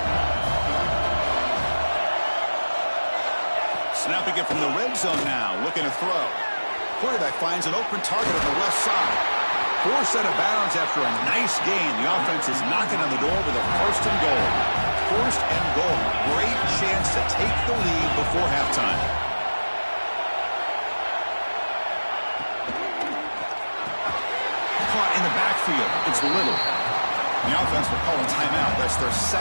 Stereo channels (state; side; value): inverted; both; correlation -1.00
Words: Snapping it from the red zone now, looking to throw. Quarterback finds an open target on the left side. Forced out of bounds after a nice gain. The offense is knocking on the door with a first and goal. First and goal. Great chance to take the lead before halftime. Caught in the backfield. It's Little. The offense will call a timeout. That's their